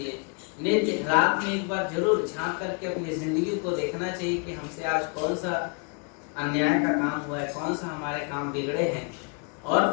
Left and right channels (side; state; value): right; quieter; 36.1 dB